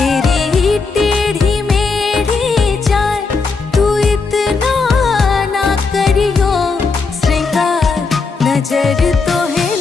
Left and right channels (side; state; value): right; quieter; 4.4 dB